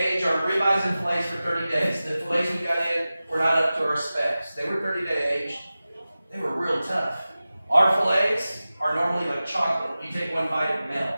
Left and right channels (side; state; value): both; inverted; correlation -0.96